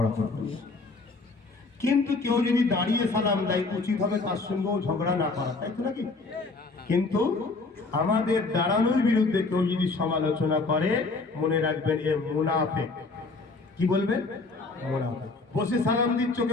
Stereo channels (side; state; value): right; quieter; 3.7 dB